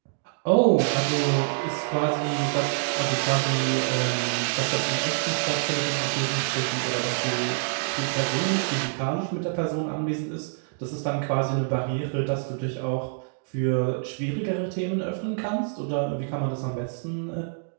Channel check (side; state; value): left; silent; digital silence